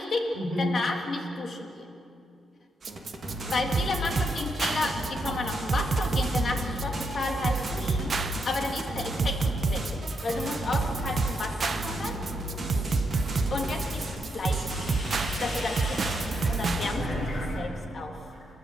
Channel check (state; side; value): normal; both; correlation 0.79